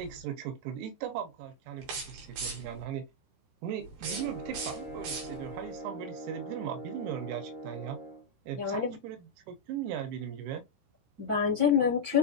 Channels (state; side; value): late; left; 15 ms